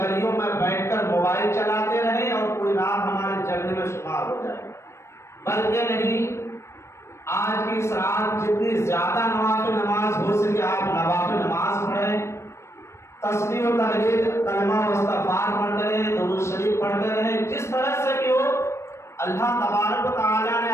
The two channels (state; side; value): late; right; 0.13 ms